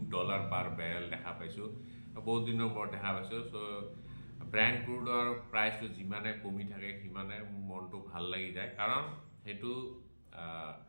পাৰ বেৰেল দেখা পাইছোঁ, বহুত দিনৰ মূৰত দেখা পাইছোঁ। চ' ব্ৰেণ্ট ক্ৰুডৰ প্ৰাইচটো যিমানে কমি থাকে সিমানে মোৰ মনটো ভাল লাগি যায়, কাৰণ সেইটো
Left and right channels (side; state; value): both; inverted; correlation -1.00